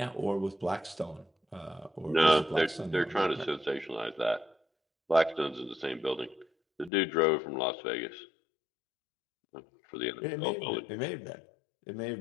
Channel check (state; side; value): drops out; right; at 6.9 s